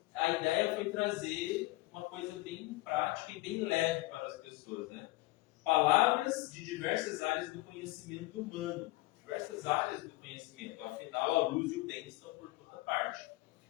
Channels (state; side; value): quieter; right; 20.5 dB